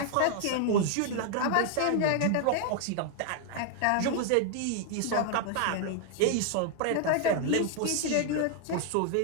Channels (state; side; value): different; both; correlation 0.00